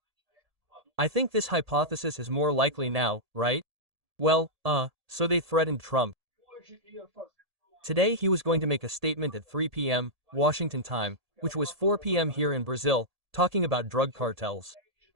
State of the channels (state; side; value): late; left; 1.7 ms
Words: I think this hypothesis is more likely now, right? Well, so they threatened Trump. Today he was going to make a statement at 3 p.m. Washington time, which was 4 p.m. here in Brazil, talking about drug cartels.